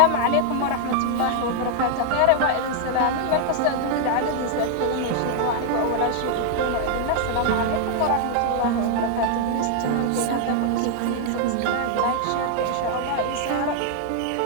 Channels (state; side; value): different; both; correlation 0.00